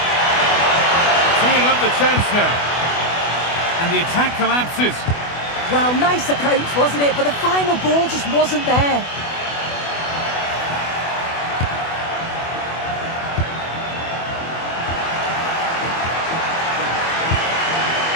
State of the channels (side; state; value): right; late; 24 ms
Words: Teeing up the chance now. And the attack collapses. Well, nice approach, wasn't it? But the final ball just wasn't there.